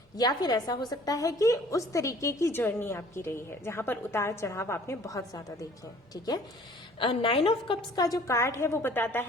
या फिर ऐसा हो सकता है कि उस तरीके की जर्नी आपकी रही है जहां पर उतार चढ़ाव आपने बहुत ज्यादा देखे हैं। ठीक है, 9 ऑफ कप्स का जो कार्ड है वो बताता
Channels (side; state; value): both; normal; correlation 0.52